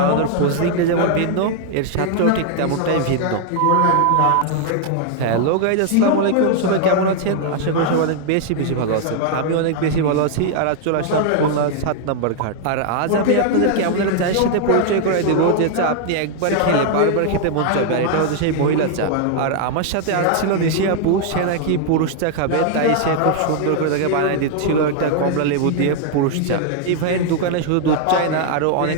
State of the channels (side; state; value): both; different; correlation 0.00